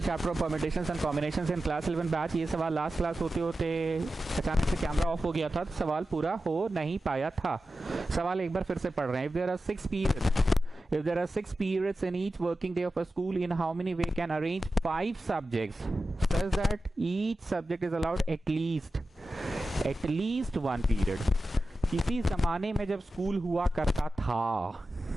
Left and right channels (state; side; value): normal; both; correlation 0.93